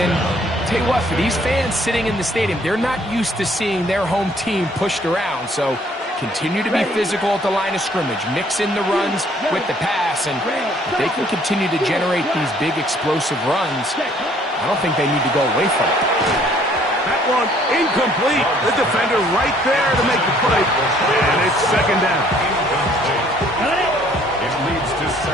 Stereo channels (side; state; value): both; normal; correlation 0.61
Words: tell you what, for these fans sitting in the stadium, they're not used to seeing their home team pushed around. So continue to be physical at the line of scrimmage. Mix in the runs with the pass. And if they can continue to generate these big explosive runs, I don't think they need to go away from it. That one incomplete. The defender right there to make the play. And it's second down. It leads to